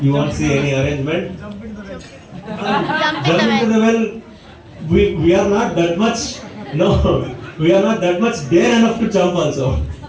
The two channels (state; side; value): identical; both; correlation 1.00